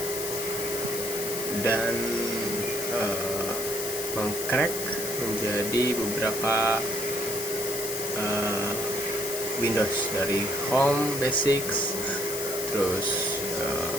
dan mengcrack menjadi beberapa Windows, dari Home, Basics, terus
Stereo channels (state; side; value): noise; left; hiss, 4 dB below the sound